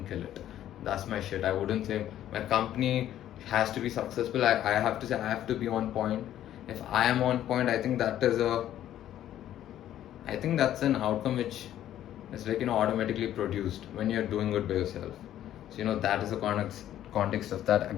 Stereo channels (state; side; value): quieter; right; 11.9 dB